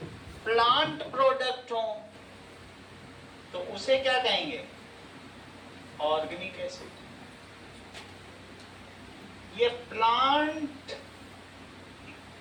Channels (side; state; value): both; identical; correlation 1.00